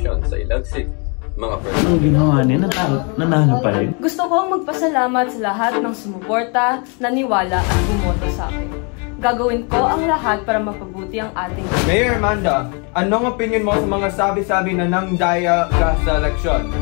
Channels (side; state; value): right; quieter; 34.6 dB